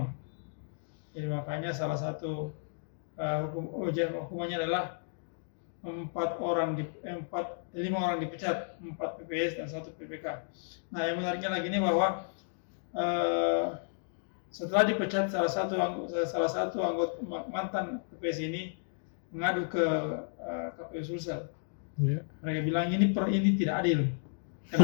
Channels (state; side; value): silent; right; digital silence